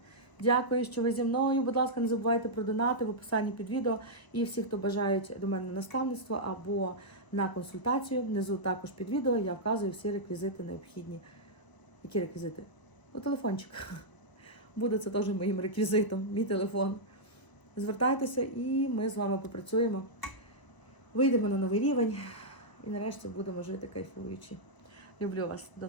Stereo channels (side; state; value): right; late; 1.0 ms